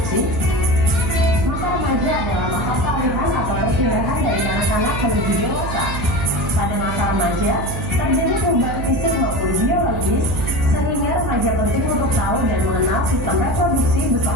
Masa remaja adalah masa peralihan atau perpindahan dari anak-anak menuju dewasa. Pada masa remaja, terjadi perubahan fisik maupun biologis, sehingga remaja penting untuk tahu dan mengenal sistem reproduksi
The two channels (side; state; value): right; noise; hum, 5 dB below the sound